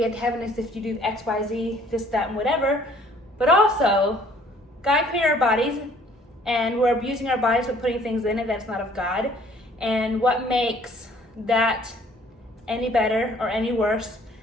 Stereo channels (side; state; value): both; normal; correlation 0.58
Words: to heaven is if you do X, Y, Z, this, that, and whatever. But also, God created our bodies, and we're abusing our bodies with putting things in it that's not of God. And what makes that any better or any worse